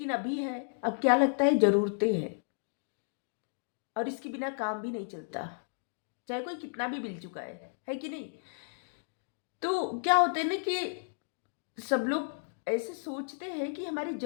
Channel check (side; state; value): right; silent; digital silence